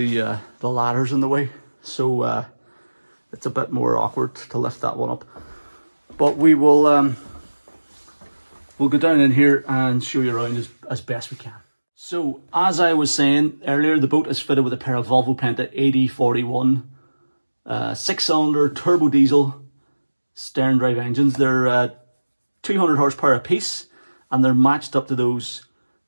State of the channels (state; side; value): inverted; both; correlation -1.00